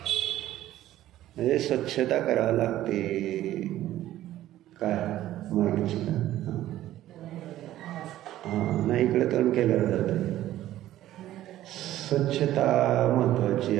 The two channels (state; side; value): quieter; left; 13.8 dB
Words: म्हणजे स्वच्छता करावी लागते. काय माहिती का? हां, नाही इकडे तोंड केलं जातं. स्वच्छता महत्वाची